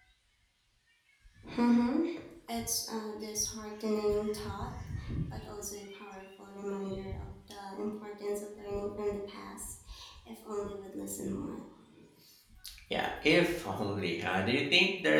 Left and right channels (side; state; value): both; identical; correlation 1.00